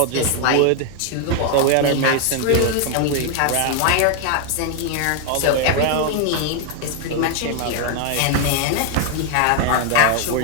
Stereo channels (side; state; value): both; different; correlation 0.00